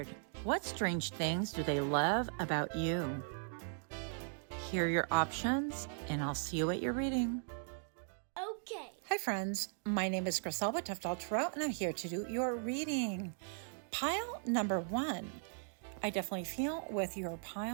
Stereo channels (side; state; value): left; silent; digital silence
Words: What strange things do they love about you? Here are your options, and I'll see you at your reading. Okay. Hi friends, my name is Griselda Toughdolltarot, and I'm here to do your reading. Pile number 1. I definitely feel with your